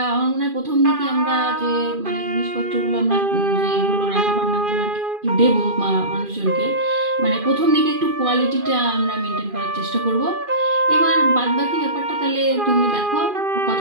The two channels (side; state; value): left; late; 2.4 ms